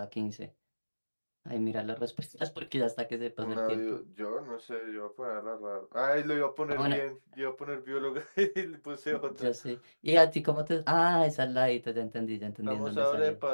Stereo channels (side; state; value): both; inverted; correlation -1.00